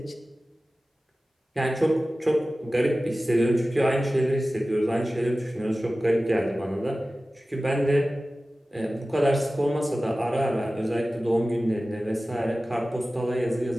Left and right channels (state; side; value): normal; both; correlation 0.96